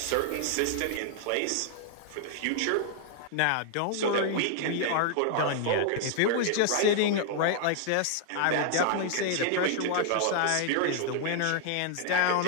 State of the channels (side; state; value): both; different; correlation 0.00